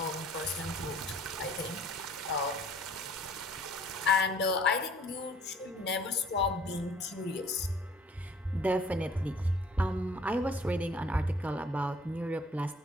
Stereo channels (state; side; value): normal; both; correlation 0.56